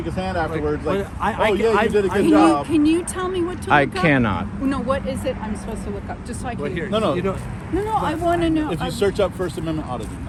his hand afterwards, like, I- oh yeah, you did a good Can job. can you tell me what to I look up? cannot. No, what is it I'm supposed to look up? Just so I can. Well, here, No. You know, No, I want to know. If you search up First Amendment auditing,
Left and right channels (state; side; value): identical; both; correlation 1.00